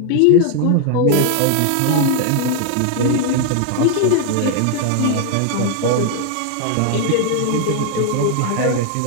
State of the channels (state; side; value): different; both; correlation 0.00